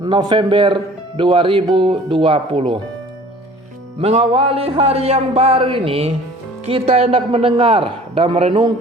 November 2020. Mengawali hari yang baru ini, kita hendak mendengar dan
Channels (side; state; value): both; normal; correlation 0.48